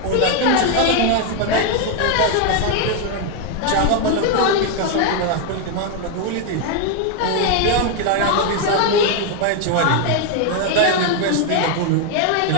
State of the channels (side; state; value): both; different; correlation 0.01